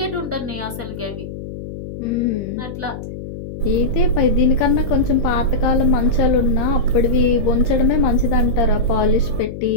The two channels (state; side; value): noise; left; hum, 10 dB below the sound